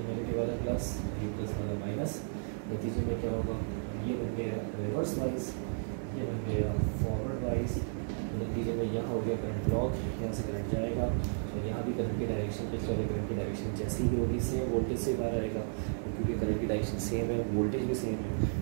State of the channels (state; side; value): silent; left; digital silence